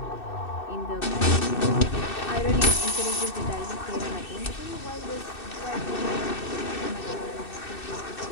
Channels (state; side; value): late; right; 2.6 ms